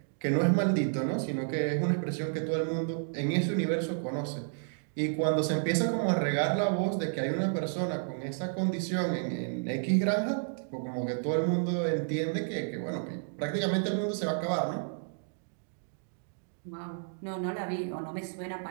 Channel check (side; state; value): left; silent; digital silence